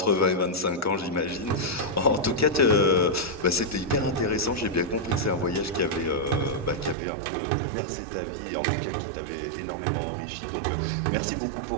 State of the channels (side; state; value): left; drops out; at 7.0 s